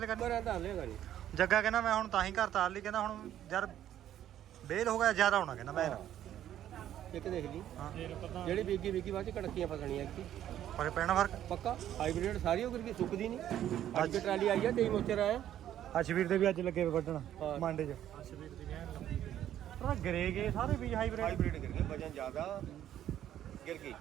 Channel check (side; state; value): left; quieter; 11.4 dB